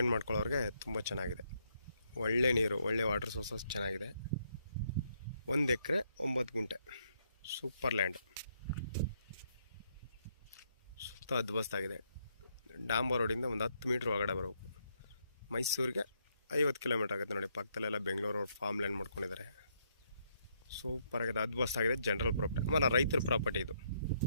ಮಾಡ್ಕೊಳ್ಳೋರಿಗೆ ತುಂಬ ಚೆನ್ನಾಗಿದೆ. ಒಳ್ಳೆ ನೀರು, ಒಳ್ಳೆ ವಾಟರ್ ಸೋರ್ಸಸ್ ಚೆನ್ನಾಗಿದೆ. 1 ಎಕರೆ 9 ಗುಂಟೆ ಸೂಪರ್ ಲ್ಯಾಂಡ್. ಸುತ್ತ ಅದ್ಭುತವಾಗಿದೆ. ಡಾಂಬರ್ ರೋಡಿಂದ ಒಂದು 10 ಮೀಟ್ರ್ ಒಳಗಡೆ ಬರಬೇಕು. ಮೈಸೂರಿಗೆ 50 ಕಿಲೋಮೀಟ್ರ್ ಆಗುತ್ತೆ ನೋಡಿ. ಪಕ್ಕದಲ್ಲೆಲ್ಲ ಬೆಂಗಳೂರು ಫಾರ್ಮ್ ಲ್ಯಾಂಡ್ ಮಾಡ್ಕೊಂಡಿದ್ದಾರೆ. ಸೂಪರ್ ಆಗಿದೆ, ಅದ್ಭುತವಾಗಿದೆ. ಜನರಲ್ ಪ್ರಾಪರ್ಟಿ ಆಮೇಲೆ ರೈತರ ಪ್ರಾಪರ್ಟಿ ಇದು.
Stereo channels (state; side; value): inverted; both; correlation -0.74